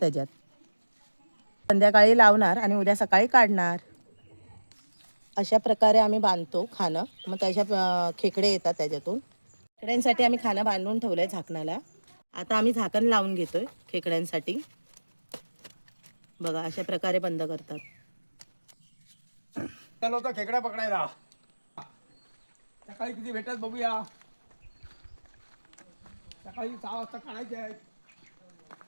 त्याच्यात. संध्याकाळी लावणार आणि उद्या सकाळी काढणार. अशा प्रकारे आम्ही बांधतो खाणं. मग त्याच्या खेकडे येतात त्याच्यातून. खेकड्यांसाठी आम्ही खाणं बांधून ठेवलंय झाकणाला. आता आम्ही झाकण लावून घेतोय खेकड्यांसाठी. बघा अशा प्रकारे बंद करतात. चलो तर खेकडा पकडायला. सकाळी किती भेटतात बघूया. सकाळी 6 वाजता काढायचे आहेत.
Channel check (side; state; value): both; inverted; correlation -1.00